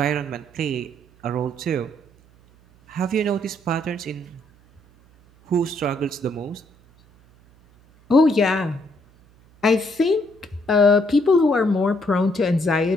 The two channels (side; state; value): right; noise; hum, 29 dB below the sound